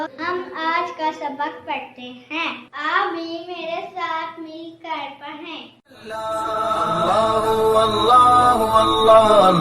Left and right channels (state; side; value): identical; both; correlation 1.00